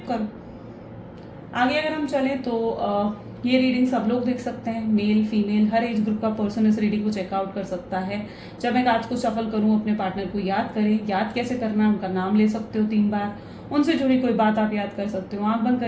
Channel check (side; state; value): both; identical; correlation 1.00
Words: करो। आगे अगर हम चलें तो ये रीडिंग सब लोग देख सकते हैं, मेल फीमेल हर एज ग्रुप का पर्सन इस रीडिंग को चेकआउट कर सकता है। जब मैं कार्ड्स को शफल करूँ अपने पार्टनर को याद करें। याद कैसे करना है? उनका नाम ले सकते हो 3 बार, उनसे जुड़ी कोई बात आप याद कर सकते हो, आंख बंद